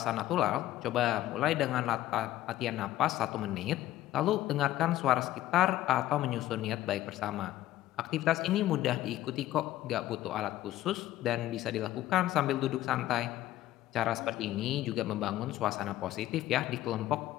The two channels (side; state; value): right; quieter; 14.5 dB